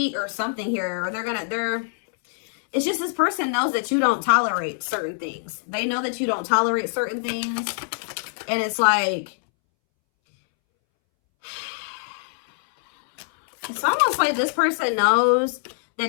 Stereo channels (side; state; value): right; silent; 63 dB below the other